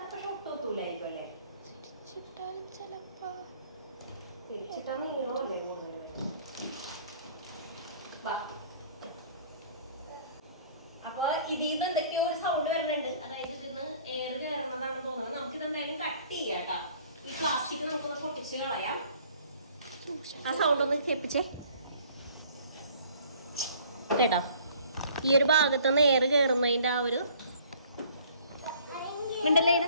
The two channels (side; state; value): both; inverted; correlation -0.55